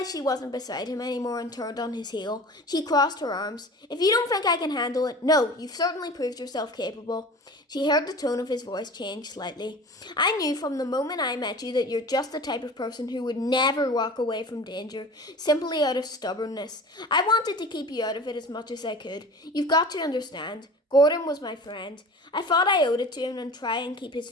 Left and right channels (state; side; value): normal; both; correlation 0.38